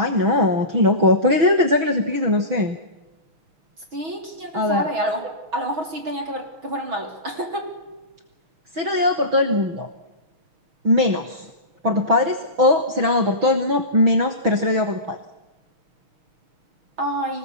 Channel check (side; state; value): left; late; 6.2 ms